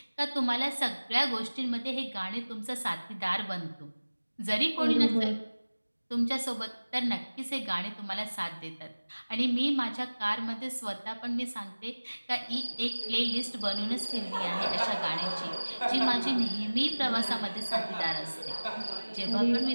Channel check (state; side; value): inverted; both; correlation -1.00